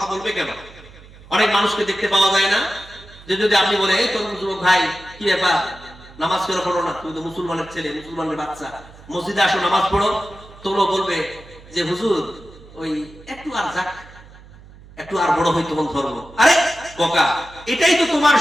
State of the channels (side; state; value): right; noise; hum, 21 dB below the sound